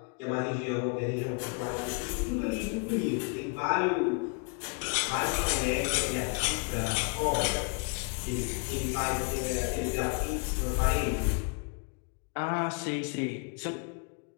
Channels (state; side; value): quieter; right; 34.9 dB